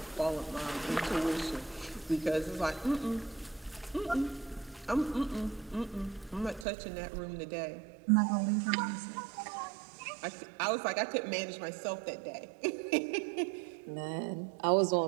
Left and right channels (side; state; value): left; drops out; at 6.7 s